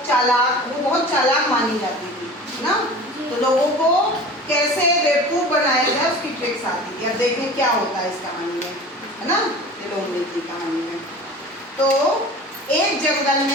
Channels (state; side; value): normal; both; correlation 0.38